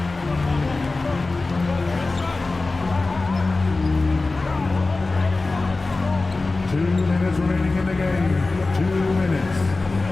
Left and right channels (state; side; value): quieter; right; 3.4 dB